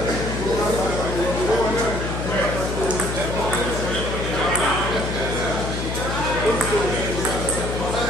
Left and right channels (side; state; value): left; noise; hum, 3 dB below the sound